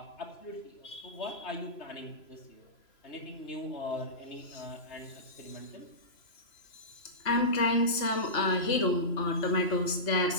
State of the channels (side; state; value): right; late; 3.0 ms